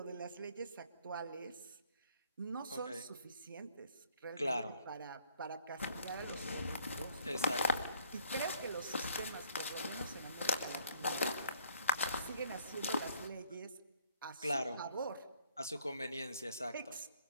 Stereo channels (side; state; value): both; inverted; correlation -0.62